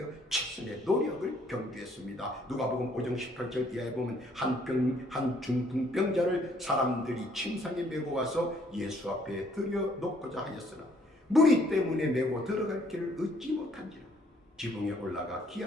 최선의 노력을 경주했습니다. 누가복음 5장 18절 이하에 보면 한 중풍병자를 사람들이 침상에 메고 와서 예수 앞에 들여놓고자 하였으나 무리 때문에 메고 들어갈 길을 얻지 못한지라 지붕에 올라가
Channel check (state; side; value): normal; both; correlation 0.64